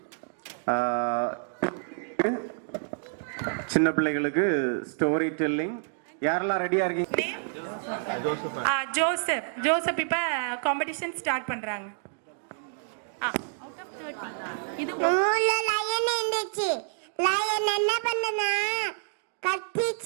சின்ன பிள்ளைகளுக்கு ஸ்டோரி டெல்லிங். யாரெல்லாம் ரெடியா இருக்கீங்க? ஜோசப் இப்ப காம்படிஷன் ஸ்டார்ட் பண்றாங்க. இது ஊர்ல லயன் இருந்துச்சு. லயன் என்ன பண்ணுனா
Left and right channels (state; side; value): silent; left; digital silence